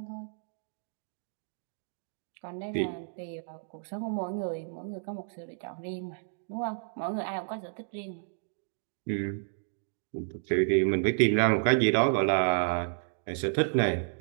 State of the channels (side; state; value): left; silent; digital silence